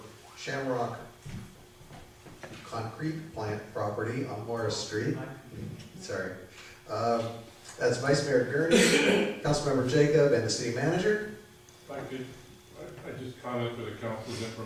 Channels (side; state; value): both; identical; correlation 1.00